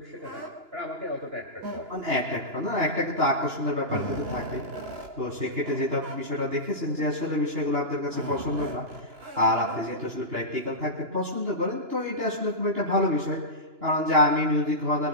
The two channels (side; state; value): left; late; 2.9 ms